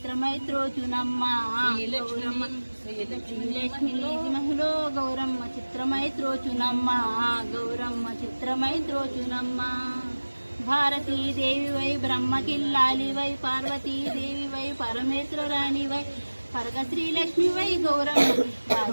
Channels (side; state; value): both; inverted; correlation -1.00